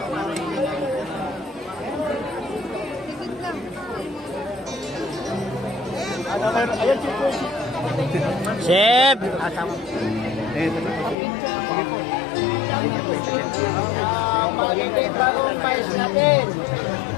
Chef! Magiging bagong mais natin.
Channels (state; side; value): drops out; right; at 11.2 s